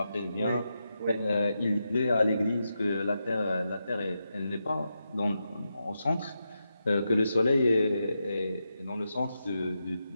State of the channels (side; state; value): both; inverted; correlation -0.87